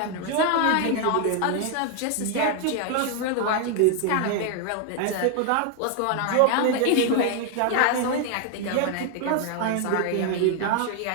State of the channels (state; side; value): different; both; correlation 0.00